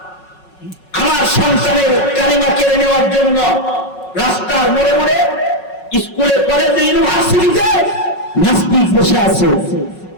সন্তানের কালিমা কেড়ে নেওয়ার জন্য রাস্তার মোড়ে মোড়ে, স্কুলে, কলেজে, ইউনিভার্সিটিতে নাস্তিক বসে আছে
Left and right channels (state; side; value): late; right; 5.4 ms